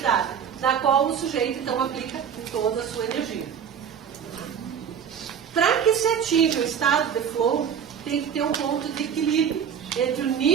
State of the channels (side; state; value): left; quieter; 7.8 dB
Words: na qual o sujeito então aplica toda a sua energia. Para que se atinja o estado de flow, tem que ter um ponto de equilíbrio entre o